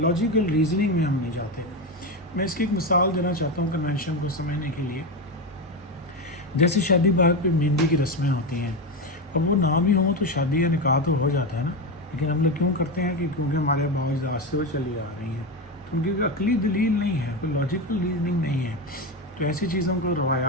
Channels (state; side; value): normal; both; correlation 0.14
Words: रीजनिंग में हम नहीं जाते। मैं इसकी एक मिसाल देना चाहता हूँ कन्वेंशन को समझने के लिए। जैसे शादी ब्याह पे मेहंदी की रस्में होती हैं, अब वो ना भी हों तो शादी या निकाह तो हो जाता है ना, लेकिन हम लोग क्यों करते हैं कि क्योंकि हमारे बाज़ से वो चली आ रही हैं, तो उनकी अकली दलील नहीं है, कोई लॉजिकल रीजनिंग नहीं है। तो ऐसी चीज़ों को